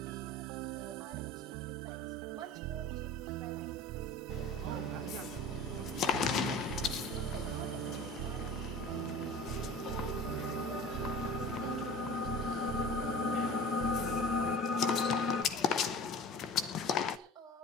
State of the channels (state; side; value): normal; both; correlation 0.38